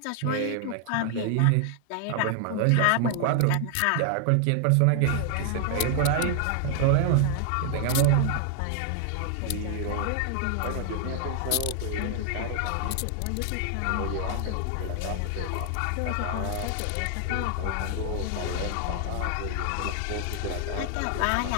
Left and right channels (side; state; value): both; different; correlation 0.00